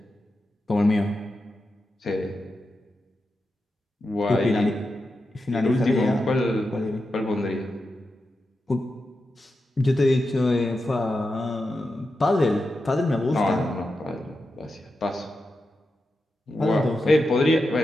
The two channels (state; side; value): normal; both; correlation 0.89